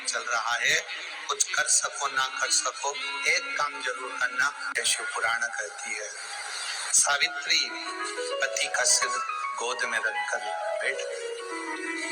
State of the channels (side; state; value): both; identical; correlation 1.00